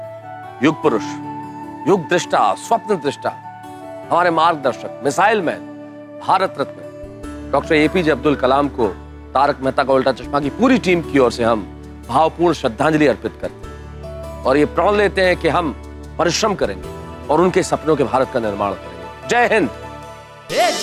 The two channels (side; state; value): both; identical; correlation 1.00